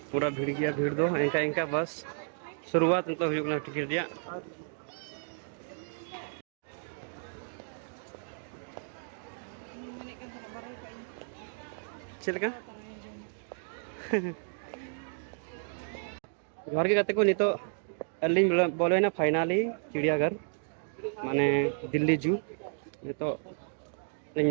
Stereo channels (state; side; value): silent; left; digital silence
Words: पूरा भीड़ गया भीड़ दो इनका इनका बस शुरुआत तो हुई टिकट दिया चलका घर के गाते को नहीं तो अली बोले फाइनली चिड़ियाघर माने दिल्ली जू नहीं तो